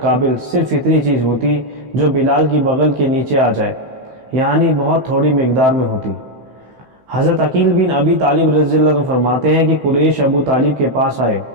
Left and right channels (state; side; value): late; left; 15 ms